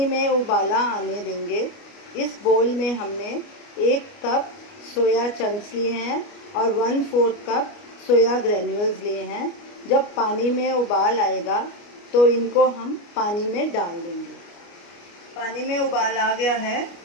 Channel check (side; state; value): right; late; 29 ms